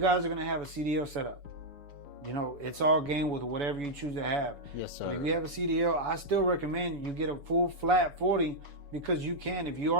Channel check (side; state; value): left; late; 7.0 ms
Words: are going to have a CDL setup, it's all game with whatever you choose to have. Yes, sir. But if you have a CDL, I still recommend you get a full flat 40, because you can. If you